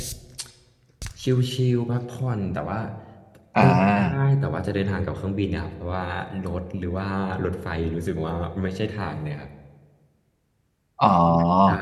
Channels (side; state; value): both; identical; correlation 1.00